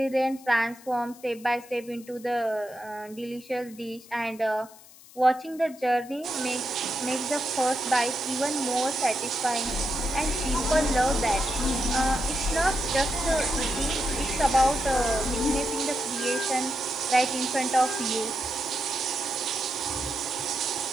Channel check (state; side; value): noise; left; hiss, 22 dB below the sound